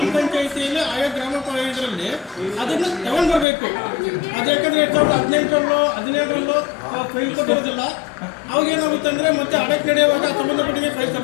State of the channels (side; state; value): right; drops out; at 3.5 s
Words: ಪಂಚಾಯಿತಿಯಲ್ಲಿ ಆಯಾ ಗ್ರಾಮ ಇದರಲ್ಲಿ ಅದನ್ನು ತಗೊಂಡು ಬರಬೇಕು. ಅದು ಯಾಕಂದರೆ 2018ರಲ್ಲೋ 17ರಲ್ಲೋ ಫೈಲ್ ಕೊಟ್ಟಿರೋದಿಲ್ಲ. ಅವಾಗ ಏನಾಗುತ್ತೆ ಅಂದರೆ ಮತ್ತೆ ಆಡಳಿತ ನಡೆಯುವಾಗ ಸಂಬಂಧಪಟ್ಟಂಗೆ ಫೈಲ್